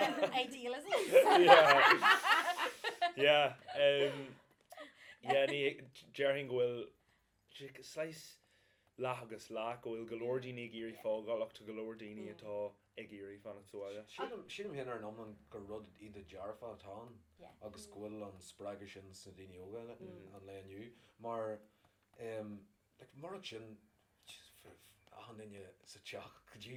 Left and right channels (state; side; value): identical; both; correlation 1.00